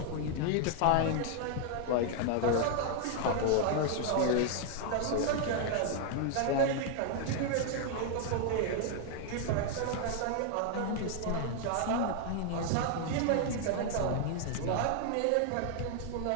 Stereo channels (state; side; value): different; both; correlation 0.00